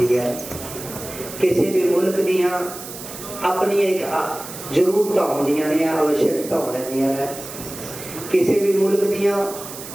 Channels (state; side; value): noise; right; hiss, 12 dB below the sound